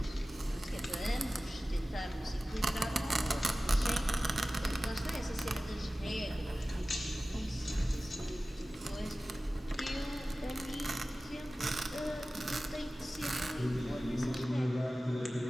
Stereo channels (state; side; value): normal; both; correlation 0.96